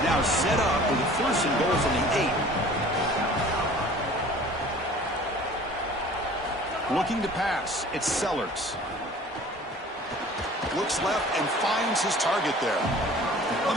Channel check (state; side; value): normal; both; correlation 0.47